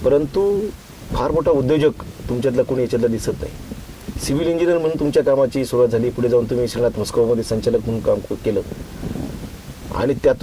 परंतु फार मोठा उद्योजक तुमच्यातला कोणी याच्यातला दिसत नाही. सिव्हिल इंजिनियर म्हणून तुमच्या कामाची सुरुवात झाली, पुढे जाऊन तुम्ही श्रीनाथ मस्कोबामध्ये संचालक म्हणून काम केलं आणि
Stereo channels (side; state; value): both; identical; correlation 1.00